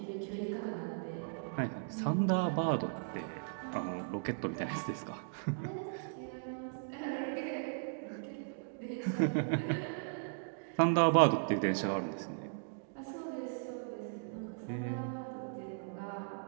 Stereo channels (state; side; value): silent; left; digital silence